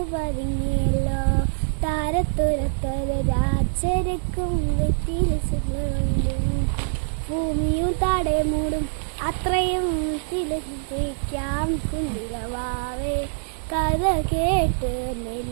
പതുങ്ങിയല്ലോ താരത്തുരത്തൊരു രാജരക്കും വെറ്റില് ചെല്ലും ഭൂമിയും താടെ മൂടും അത്രയും തിലക്കാം കുഞ്ഞിരവാവേ കഥ കേട്ട്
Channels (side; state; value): left; silent; 61 dB below the other